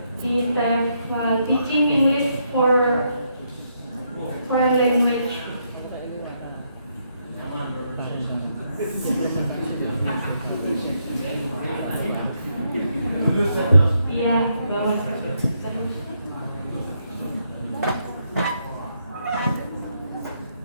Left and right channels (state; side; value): inverted; both; correlation -0.77